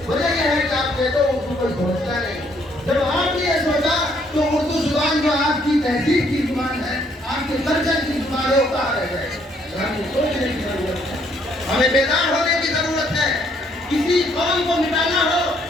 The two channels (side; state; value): both; normal; correlation 0.68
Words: وجہ یہ ہے کہ آپ کہتے ہو اردو کوئی سمجھتا نہیں. جب آپ نے یہ سوچا تو اردو زبان جو آپ کی تہذیب کی زبان ہے، آپ کے کلچر کی زبان ہے، وہ کہاں رہ گئے؟ ہمیں سوچنے کی ضرورت ہے، ہمیں بیدار ہونے کی ضرورت ہے. کسی قوم کو مٹانا ہو